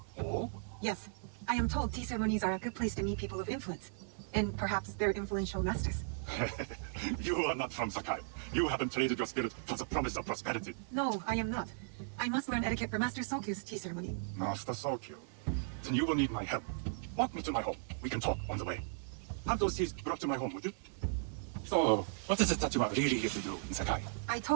Oh? Yes, I am told tea ceremonies are a good place to meet people of influence. And perhaps their influential masters. You are not from Sakai. You haven't traded your spirit for the promise of prosperity. No, I am not. I must learn etiquette for Master Sokyu's tea ceremony. Master Sokyu. Then you will need my help. Walk me to my home. We can talk on the way. Have those teas brought to my home, would you? So, what is it that you are really here to do in Sakai? I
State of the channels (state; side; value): silent; left; digital silence